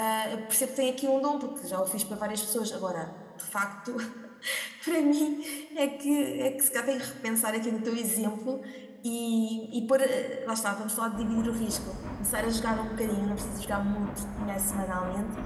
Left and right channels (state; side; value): identical; both; correlation 1.00